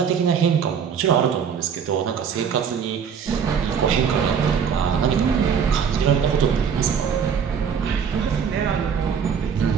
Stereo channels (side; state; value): left; quieter; 7.1 dB